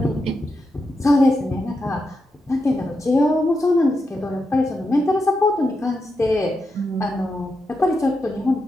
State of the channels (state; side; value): normal; both; correlation 0.86